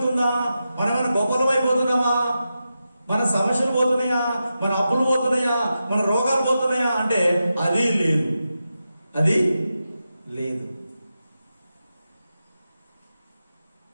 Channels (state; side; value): inverted; both; correlation -0.90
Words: మనం ఏమైనా గొప్పలం అయిపోతున్నామా? మన సమస్యలు పోతున్నాయా? మన అప్పులు పోతున్నాయా? మన రోగాలు పోతున్నాయా అంటే అది లేదు.